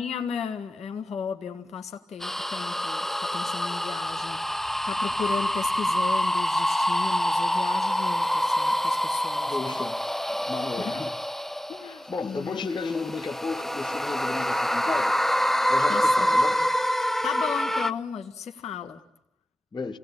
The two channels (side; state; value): both; normal; correlation 0.94